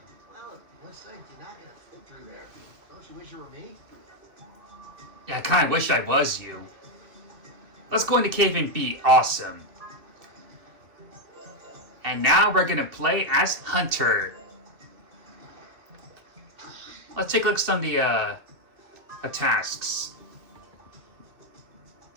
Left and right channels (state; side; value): late; left; 2.6 ms